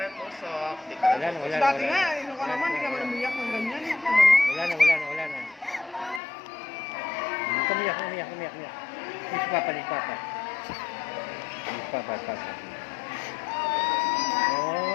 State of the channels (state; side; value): drops out; right; at 6.2 s